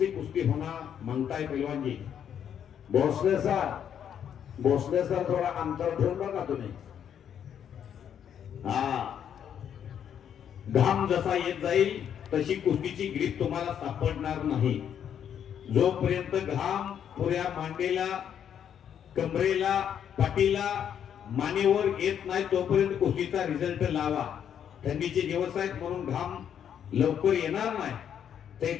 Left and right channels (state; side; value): quieter; right; 8.9 dB